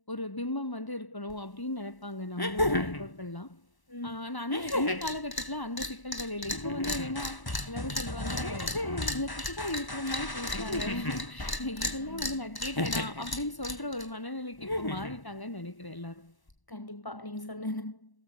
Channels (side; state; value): right; late; 1.0 ms